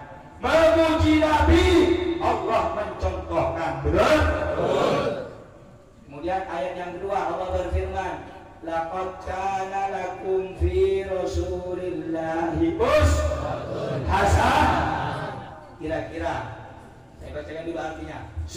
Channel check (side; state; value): both; identical; correlation 1.00